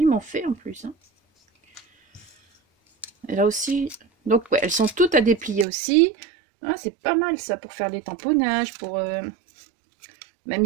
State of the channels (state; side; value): drops out; left; at 5.7 s